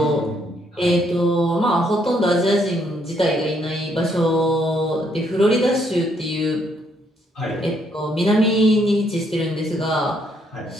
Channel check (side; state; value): both; normal; correlation 0.71